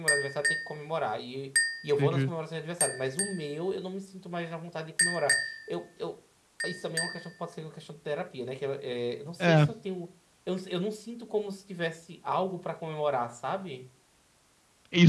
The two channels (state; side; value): identical; both; correlation 1.00